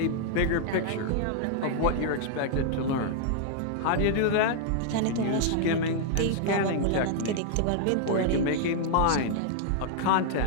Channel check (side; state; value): both; different; correlation -0.01